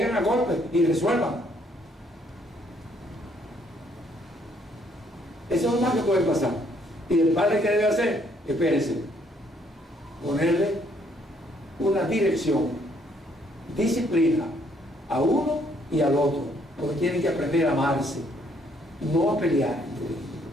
a golpes y resuelvan. Eso es lo más que puede pasar. Y el padre, ¿qué debe hacer? Espérense, ponerle una dirección, disciplina a uno y al otro, porque tienen que aprender a amarse, no a pelear.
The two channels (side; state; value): both; normal; correlation 0.67